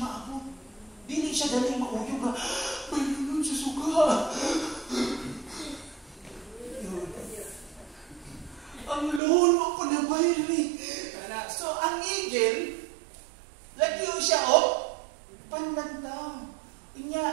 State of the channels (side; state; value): left; drops out; at 9.2 s